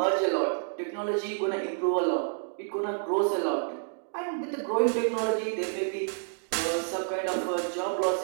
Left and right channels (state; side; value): silent; left; digital silence